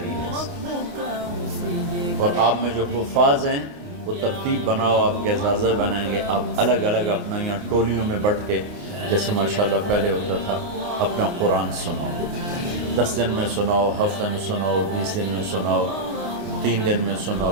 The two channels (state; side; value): late; left; 29 ms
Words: ہے۔ اور آپ میں جو حفاظ ہیں وہ ترتیب بناؤ، آپ کے اعزازہ بنائیں گے، آپ الگ الگ اپنا یہاں ٹولیوں میں بٹ کے، جیسے ماشاءاللہ پہلے ہوتا تھا، اپنا قرآن سناؤ، 10 دن میں سناؤ، ہفتے میں سناؤ، 20 دن میں سناؤ، 3 دن میں